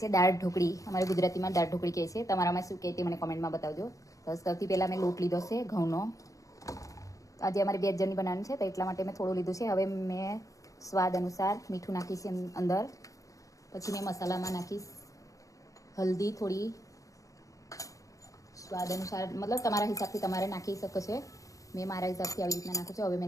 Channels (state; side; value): late; right; 0.16 ms